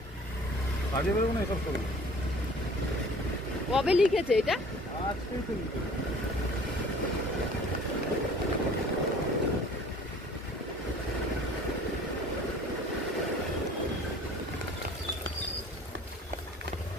কাজে বেরোবো না, এসব করবো। কবে লিখেছে এটা? আজকেই তো লিখেছে।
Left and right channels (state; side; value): normal; both; correlation 0.48